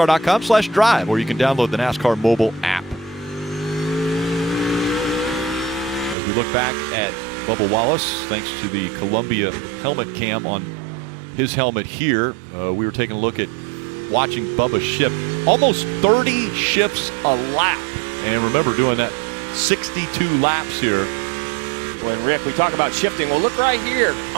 or you can download the NASCAR mobile app. As we look back at Bubba Wallace, thanks to the Columbia helmet cam on his helmet here, we were taking a look at watching Bubba shift almost 30 shifts a lap. And remember, doing that 62 laps here. When Rick, we talk about shifting. Well, look right here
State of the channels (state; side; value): drops out; left; at 6.2 s